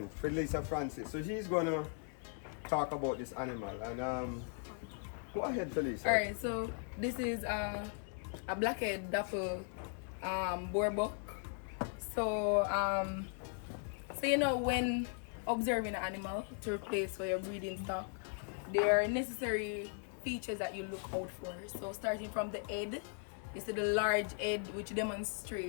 Felicia Francis. So she's gonna talk about this animal and go ahead, Felicia. Alright, so this is a blackhead dapple boar buck. So you know, when observing an animal to replace for your breeding stock, there are necessary features that you look out for. So starting from the head, you see the large head which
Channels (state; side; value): silent; right; 52 dB below the other